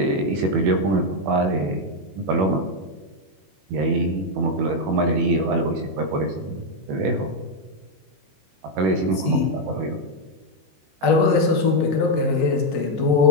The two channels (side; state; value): left; late; 21 ms